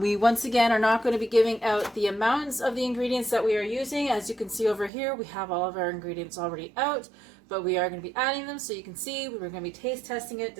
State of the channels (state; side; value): drops out; left; at 4.9 s